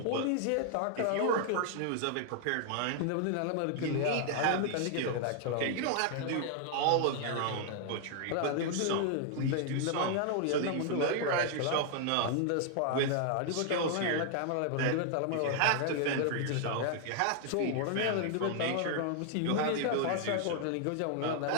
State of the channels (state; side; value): different; both; correlation 0.00